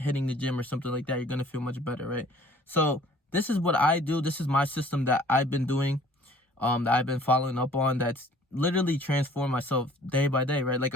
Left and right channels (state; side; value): normal; both; correlation 0.53